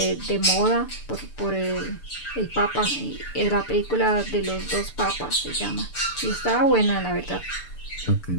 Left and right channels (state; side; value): late; right; 6.8 ms